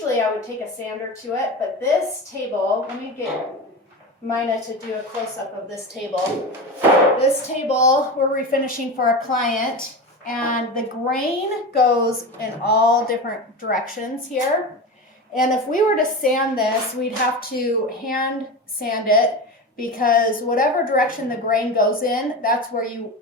I would take a sander to it, but this table, let me get Mina to do a close-up of this table. This table we're refinishing for a client, and the grain goes in all different directions here. And if we were to sand this, we'd have to hand sand it because whatever direction the grain goes in, that's where you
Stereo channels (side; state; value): both; normal; correlation 0.25